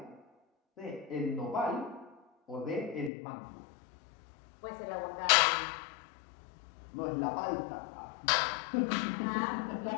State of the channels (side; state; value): right; drops out; at 3.1 s